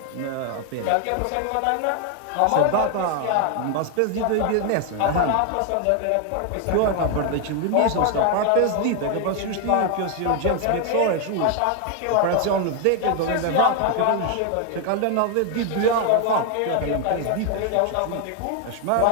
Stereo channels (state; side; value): different; both; correlation 0.00